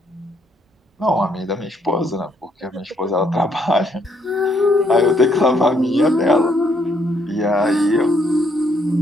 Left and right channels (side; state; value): both; normal; correlation 0.71